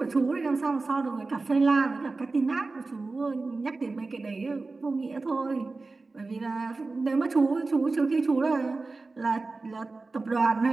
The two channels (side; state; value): left; quieter; 3.7 dB